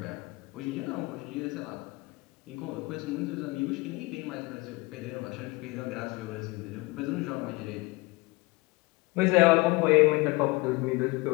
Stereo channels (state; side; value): quieter; right; 24.2 dB